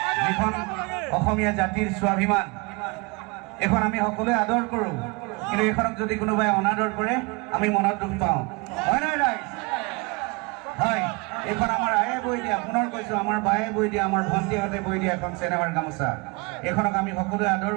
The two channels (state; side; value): quieter; left; 27.0 dB